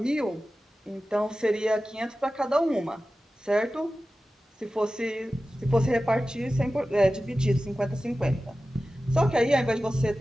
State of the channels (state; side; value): normal; both; correlation 0.95